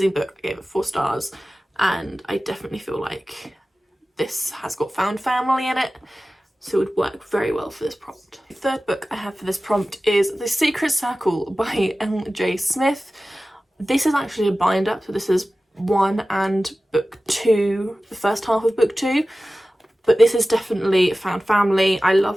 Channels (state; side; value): normal; both; correlation 0.96